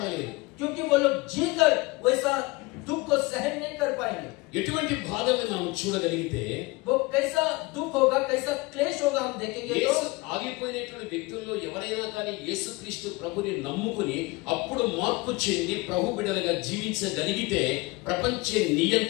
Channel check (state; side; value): quieter; right; 23.9 dB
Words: क्योंकि वो लोग जीकर वैसा दुख को सहन नहीं कर पाएंगे। ఎటువంటి బాధల్ని మనం చూడగలిగితే, वो कैसा दुख होगा, कैसा क्लेश होगा हम देखेंगे। तो యేసు ఆగిపోయినటువంటి వ్యక్తుల్లో ఎవరైనా కానీ యేసుక్రీస్తు ప్రభుని నమ్ముకుని అప్పుడు మార్పు చెంది ప్రభు బిడ్డలుగా జీవించగలిగితే ప్రపంచ